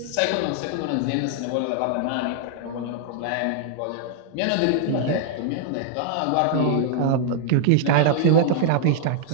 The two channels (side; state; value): both; different; correlation -0.01